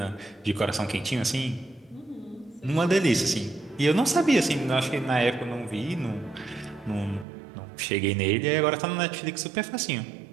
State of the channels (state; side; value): drops out; left; at 7.2 s